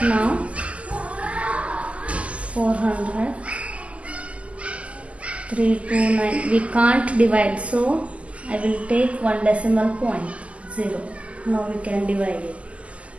Now 400, 329. We can't divide, so I will take 1 decimal point, 0. Now we can divide it.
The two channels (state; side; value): late; left; 0.063 ms